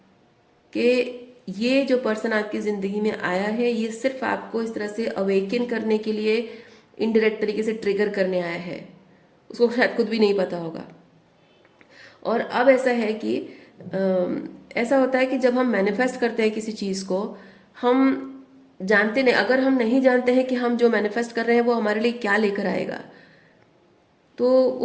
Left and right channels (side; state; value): both; identical; correlation 1.00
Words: कि ये जो पर्सन आपकी ज़िंदगी में आया है, ये सिर्फ आपको इस तरह से अवेकन करने के लिए इनडायरेक्ट तरीके से ट्रिगर करने आया है। उसको शायद खुद भी नहीं पता होगा। और अब ऐसा है कि ऐसा होता है कि जब हम मैनिफेस्ट करते हैं किसी चीज़ को, हम जानते नहीं, अगर हम नहीं जानते हैं कि हम जो मैनिफेस्ट कर रहे हैं वो हमारे लिए क्या लेकर आएगा, तो